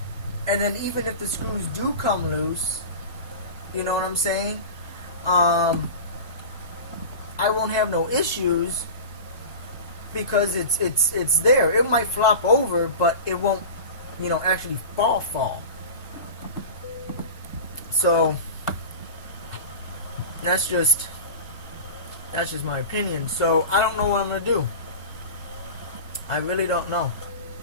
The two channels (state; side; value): inverted; both; correlation -0.32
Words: then even if the screws do come loose, you know what I'm saying, I won't have no issues, because it's there. It might flop over, but it won't, actually fall. So that's just my opinion. So I don't know what I'm gonna do. I really don't know.